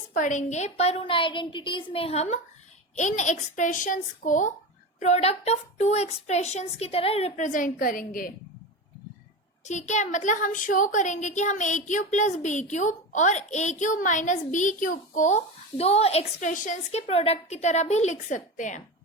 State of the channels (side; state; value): both; normal; correlation 0.24